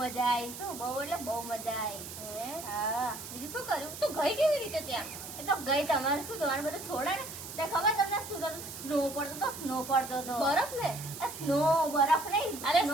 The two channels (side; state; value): right; noise; hiss, 11 dB below the sound